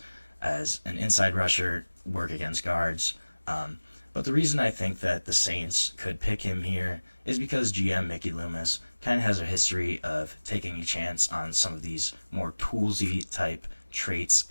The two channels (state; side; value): inverted; both; correlation -1.00